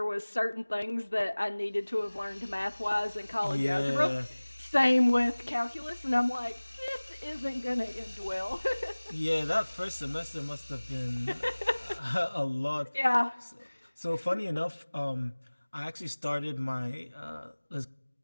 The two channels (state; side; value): inverted; both; correlation -1.00